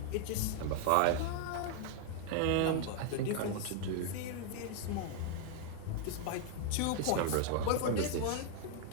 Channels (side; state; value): both; different; correlation 0.00